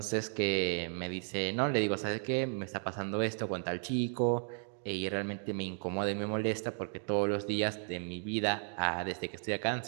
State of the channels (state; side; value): silent; left; 55 dB below the other